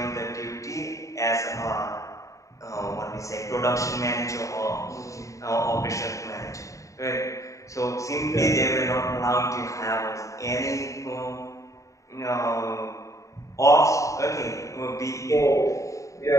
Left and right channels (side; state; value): right; late; 0.16 ms